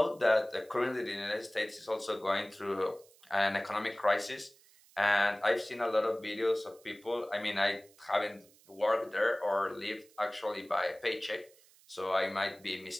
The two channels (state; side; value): noise; right; hiss, 27 dB below the sound